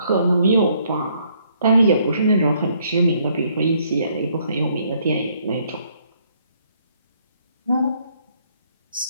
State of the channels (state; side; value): inverted; both; correlation -0.68